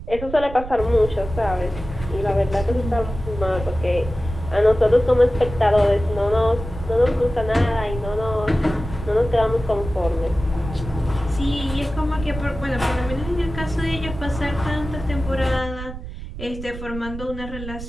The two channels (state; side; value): noise; right; rumble, 10 dB below the sound